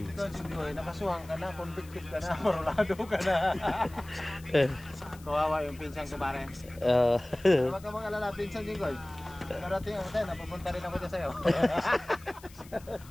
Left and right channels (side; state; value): left; noise; hiss, 22 dB below the sound